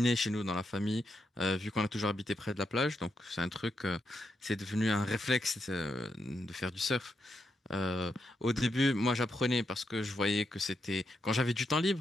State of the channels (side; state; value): both; normal; correlation 0.83